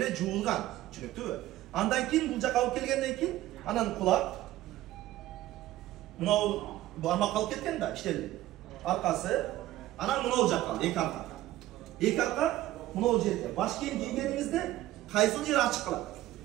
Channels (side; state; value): left; quieter; 15.1 dB